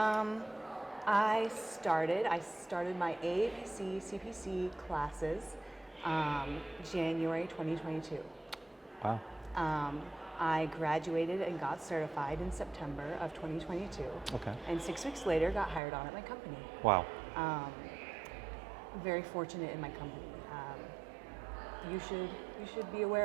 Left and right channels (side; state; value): left; drops out; at 15.8 s